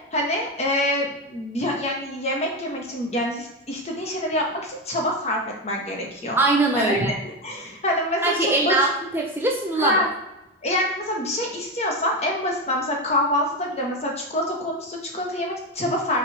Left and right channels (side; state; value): both; normal; correlation 0.14